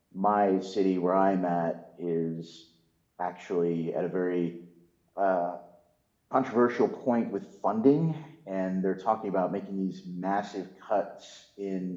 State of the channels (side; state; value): both; identical; correlation 1.00